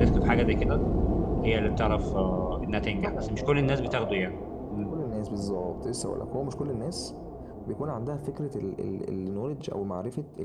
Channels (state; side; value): identical; both; correlation 1.00